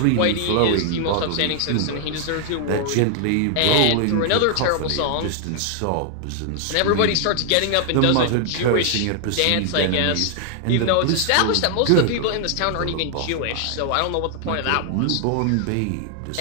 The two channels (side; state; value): both; different; correlation 0.00